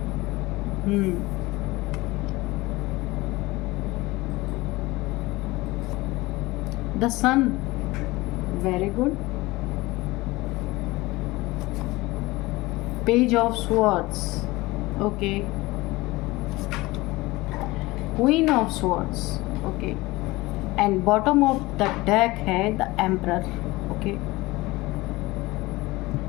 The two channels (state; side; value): quieter; right; 20.8 dB